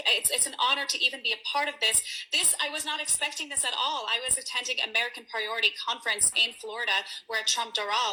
an honor to even be a part of this. I was not expecting this at all. I was attending American Priority Conference in Florida where Trump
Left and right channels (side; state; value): both; identical; correlation 1.00